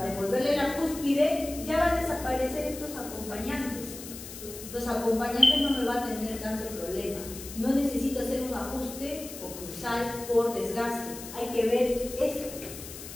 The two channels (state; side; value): noise; left; hiss, 12 dB below the sound